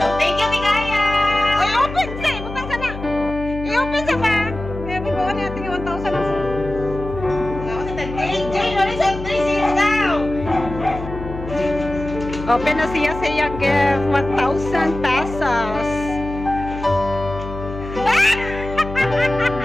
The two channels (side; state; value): left; noise; hum, 10 dB below the sound